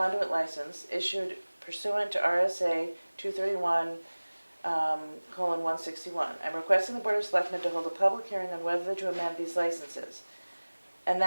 license issued pursuant to RSA 231:161. I'm requesting the Board of Selectmen to hold a public hearing on whether to amend these licenses. And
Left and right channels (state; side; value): inverted; both; correlation -1.00